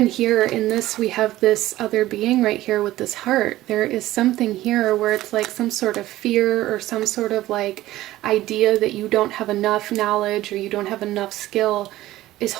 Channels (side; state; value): left; quieter; 15.8 dB